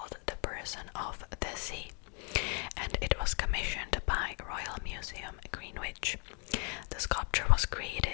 The Person of the Sea, and it was commissioned by Royal Museum Greenwich. The sculpture was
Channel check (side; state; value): right; quieter; 38.0 dB